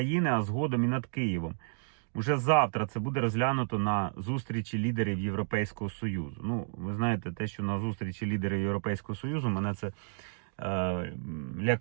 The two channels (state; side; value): silent; left; digital silence